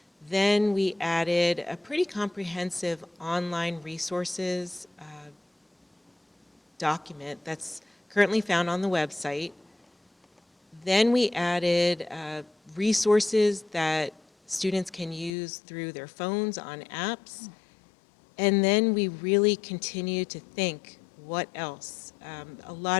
Then we added a pretty comprehensive online resources document that's currently found on the website. Then we added resources that students can use through their phones on apps. And then we really continue to think, what else? A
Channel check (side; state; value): right; drops out; at 15.3 s